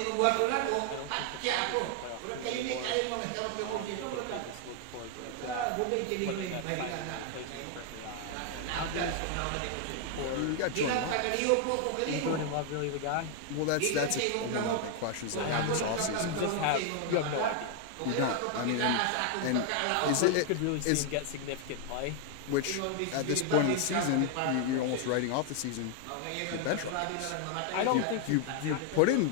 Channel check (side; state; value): both; different; correlation 0.00